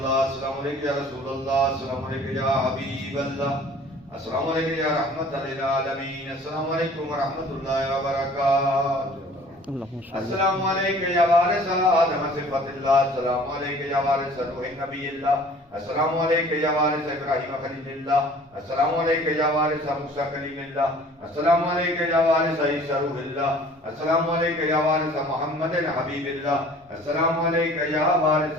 السلام علیکم یا رسول اللہ، السلام علیکم یا حبیب اللہ، السلام علیکم یا رحمت للعالمین، السلام علیکم ورحمۃ اللہ وبرکاتہ۔ السلام علیکم یا وارث آدم صفت اللہ، السلام علیکم یا وارث نوح نبی اللہ، السلام علیکم یا وارث ابراہیم خلیل اللہ، السلام علیکم یا وارث موسیٰ کلیم اللہ، السلام علیکم یا وارث عیسیٰ روح اللہ، السلام علیکم یا وارث محمد حبیب اللہ، السلام علیکم یا وارث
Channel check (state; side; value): normal; both; correlation 0.50